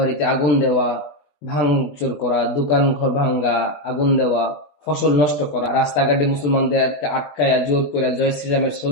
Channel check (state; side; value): late; right; 20 ms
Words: আগুন দেওয়া, ভাঙচুর করা, দোকান ঘর ভাঙ্গা, আগুন দেওয়া, ফসল নষ্ট করা, রাস্তাঘাটে মুসলমানদেরকে আটকায়া জোর করে জয় শ্রীরামের